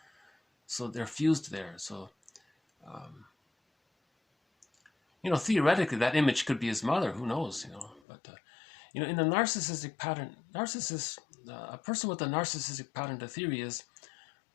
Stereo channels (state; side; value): drops out; right; at 8.0 s